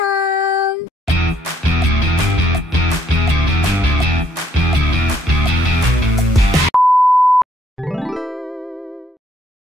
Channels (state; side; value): normal; both; correlation 0.68